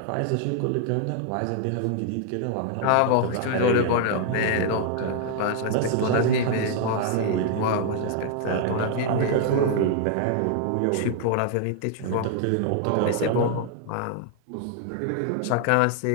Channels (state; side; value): different; both; correlation 0.00